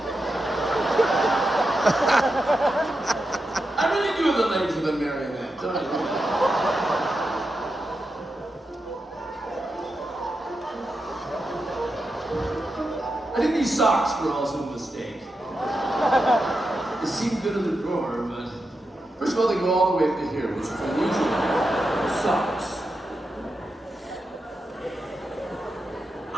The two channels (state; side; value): normal; both; correlation 0.88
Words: I really do have the legs of a marionette, don't I? I think these socks were also a mistake. They seem good in the drawer, but first of all, they go all the way up to here, which is unusual. Socks. I